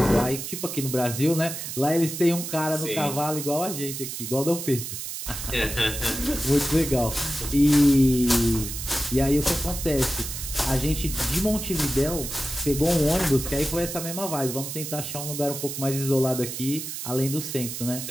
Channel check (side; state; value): right; noise; hiss, 7 dB below the sound